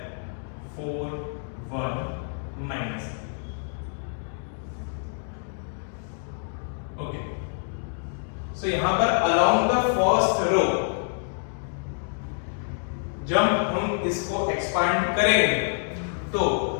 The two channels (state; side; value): silent; right; digital silence